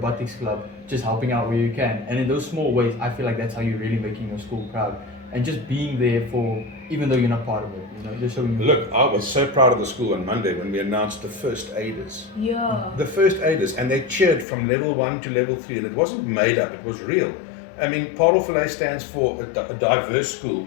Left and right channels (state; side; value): drops out; right; at 14.5 s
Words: club, just helping out where you can. And in those small ways, I feel like that's how you're really making your school proud. And just being there for, even though you're not part of it, just showing. Look, I was so proud of the school on Monday when we announced the first aiders. Yeah. The first aiders, and they cheered from level 1 to level 3, and it wasn't made up, it was real. I mean, Parel Vallei stands for a diverse school,